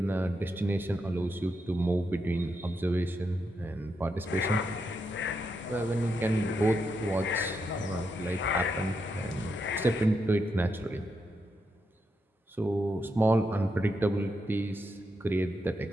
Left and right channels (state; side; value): normal; both; correlation 0.83